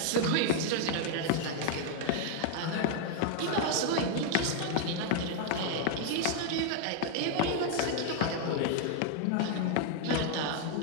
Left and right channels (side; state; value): both; different; correlation 0.00